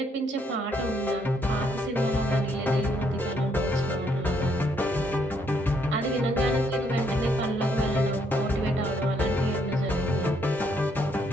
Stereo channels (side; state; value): both; normal; correlation 0.71